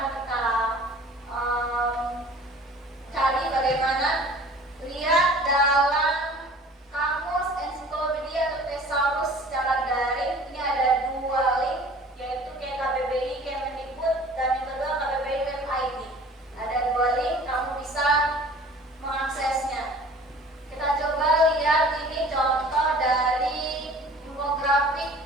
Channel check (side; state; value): both; normal; correlation 0.47